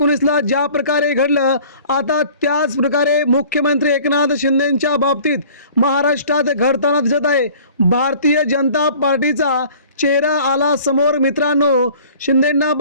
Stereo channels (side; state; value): both; inverted; correlation -0.49